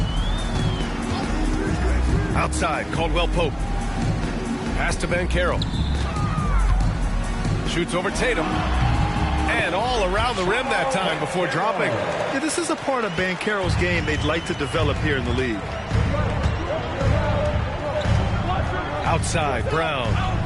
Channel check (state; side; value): identical; both; correlation 1.00